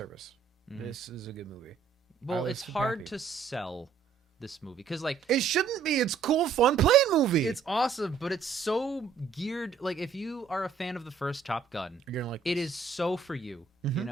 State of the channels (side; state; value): left; quieter; 5.8 dB